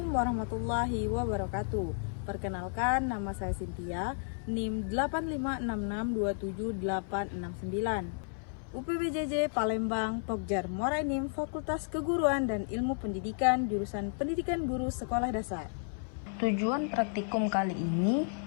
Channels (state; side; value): silent; right; 56 dB below the other